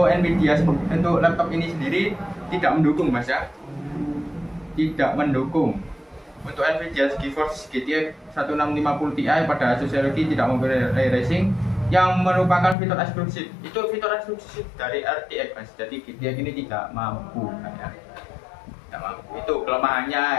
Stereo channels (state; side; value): drops out; right; at 12.8 s